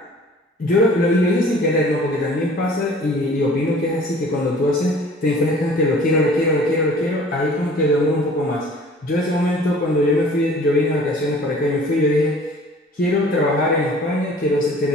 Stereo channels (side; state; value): both; normal; correlation 0.50